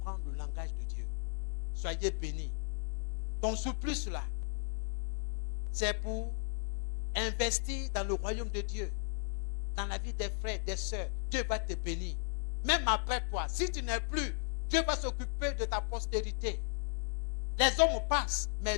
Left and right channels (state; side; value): silent; right; digital silence